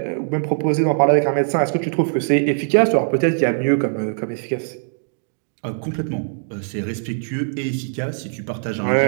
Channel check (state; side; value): silent; left; digital silence